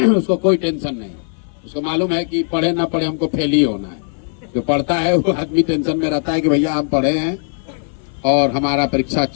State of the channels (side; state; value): right; silent; 57 dB below the other